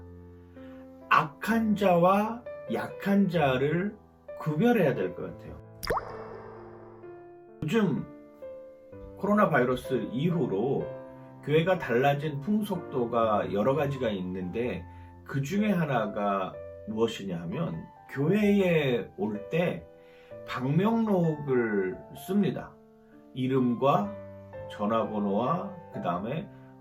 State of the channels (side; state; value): both; identical; correlation 1.00